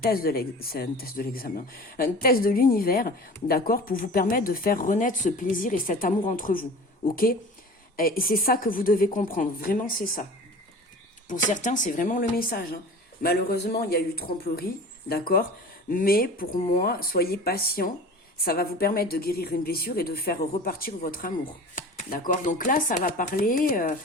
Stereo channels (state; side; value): normal; both; correlation 0.39